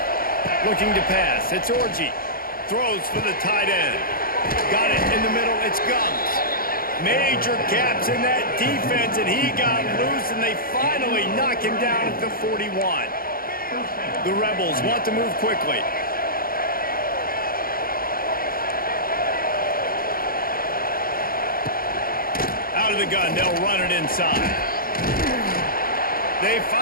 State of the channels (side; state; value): right; late; 0.42 ms